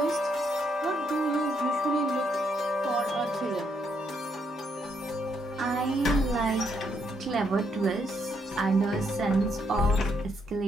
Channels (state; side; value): normal; both; correlation 0.75